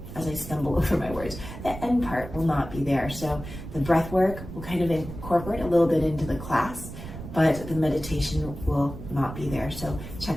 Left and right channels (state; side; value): noise; right; rumble, 11 dB below the sound